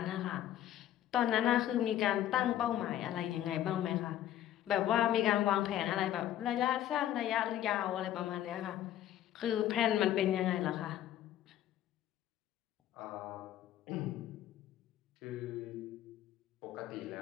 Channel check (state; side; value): quieter; right; 12.1 dB